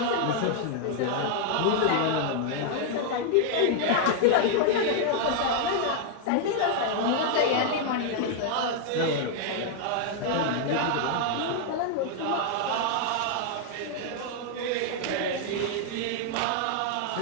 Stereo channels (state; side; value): different; both; correlation 0.00